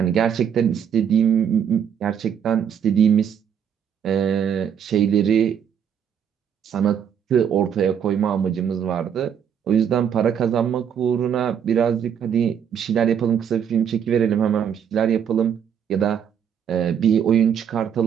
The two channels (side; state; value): left; quieter; 8.2 dB